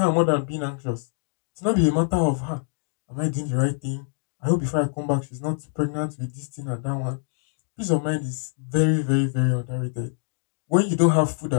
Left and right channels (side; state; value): right; silent; 60 dB below the other